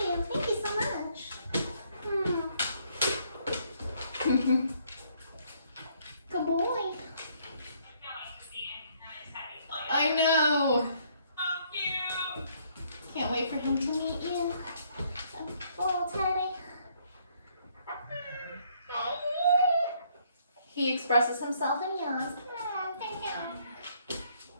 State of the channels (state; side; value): inverted; both; correlation -0.67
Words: Good boy. I know. So cute. Can't wait for him to meet you. Little teddy. He expresses himself in yawns.